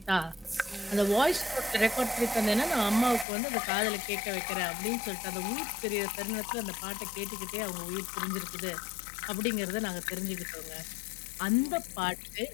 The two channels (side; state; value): right; drops out; at 3.2 s